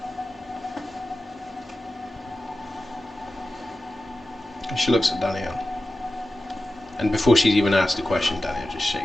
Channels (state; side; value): normal; both; correlation 0.94